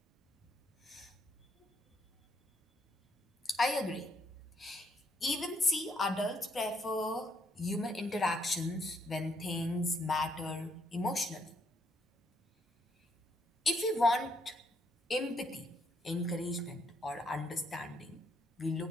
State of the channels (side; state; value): both; normal; correlation 0.72